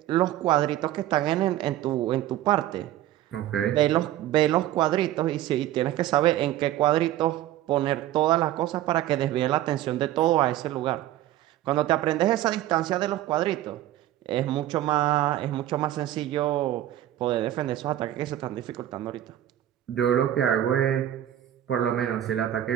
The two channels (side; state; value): left; quieter; 13.2 dB